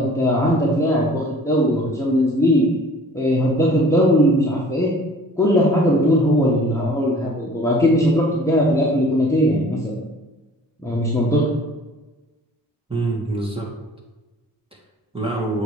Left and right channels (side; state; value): both; normal; correlation 0.50